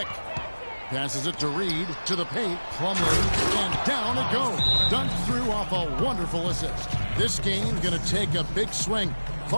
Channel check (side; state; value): both; inverted; correlation -1.00